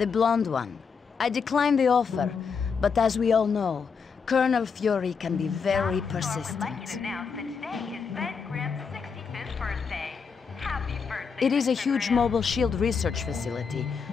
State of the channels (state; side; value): quieter; right; 5.8 dB